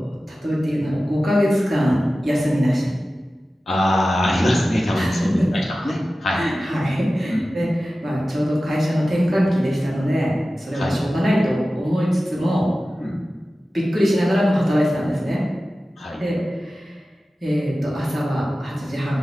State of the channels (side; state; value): both; normal; correlation 0.95